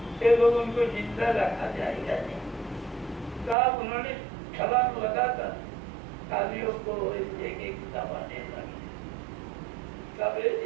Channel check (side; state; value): left; drops out; at 3.6 s